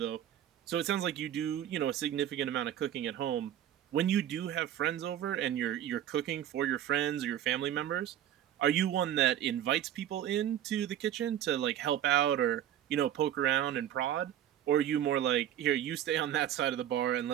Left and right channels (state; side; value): quieter; left; 11.2 dB